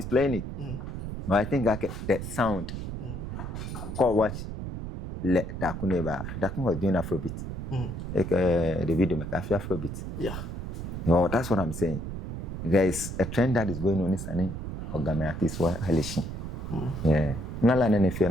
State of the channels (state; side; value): noise; right; rumble, 6 dB below the sound